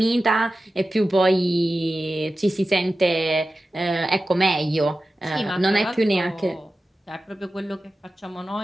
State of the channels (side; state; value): both; normal; correlation 0.94